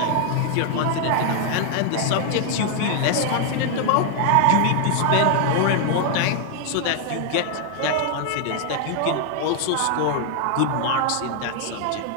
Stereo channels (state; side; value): different; both; correlation 0.00